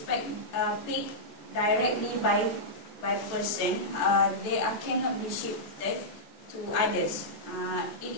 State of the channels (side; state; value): right; late; 14 ms